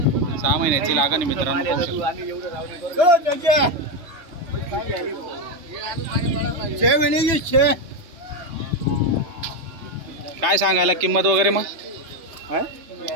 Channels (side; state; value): left; late; 3.0 ms